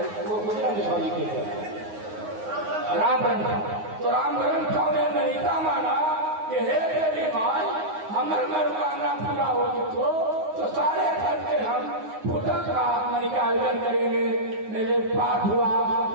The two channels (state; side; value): late; left; 9.6 ms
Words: वो गुजरात स्वामी के रामभरण, तो रामभरण ने नरीता माना कि हे देवी माई, हमारे मनोकामना पूरा हो तो सारे खर्चे हम फुटक का मनी का आयोजन करेंगे। मेरे पाठ हुआ,